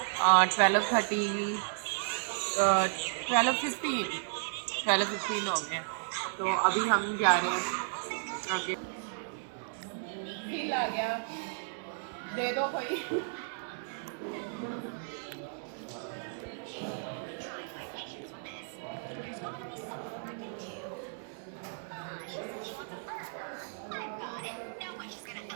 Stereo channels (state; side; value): silent; left; digital silence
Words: 12:30, 12:15 हो गए हैं। तो अभी हम जा रहे हैं आगे। बिल आ गया, दे दो कोई।